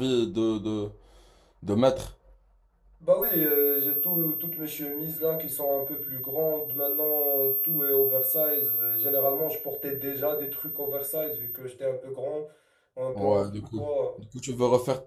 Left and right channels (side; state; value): both; identical; correlation 1.00